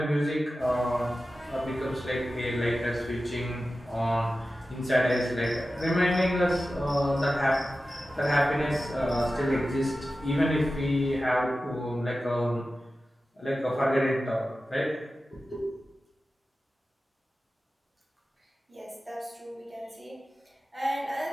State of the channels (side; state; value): both; normal; correlation 0.94